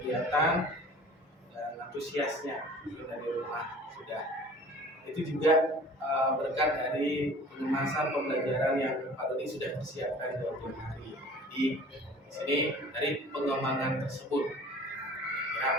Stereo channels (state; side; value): normal; both; correlation 0.46